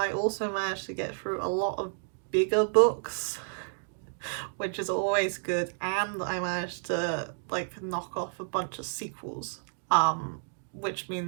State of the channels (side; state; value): left; silent; digital silence